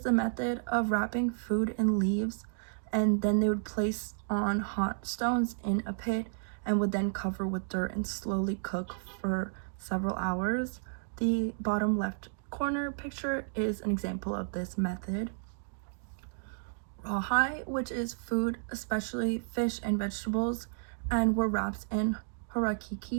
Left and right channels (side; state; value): left; silent; digital silence